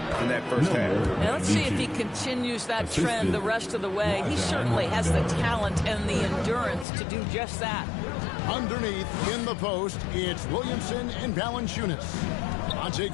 that first half. Now let's see if he continues that trend the rest of the way. He certainly has the talent and the endurance to do just that. Underneath, in the post, it's Williamson and Valanciunas. Monte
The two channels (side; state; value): right; drops out; at 6.9 s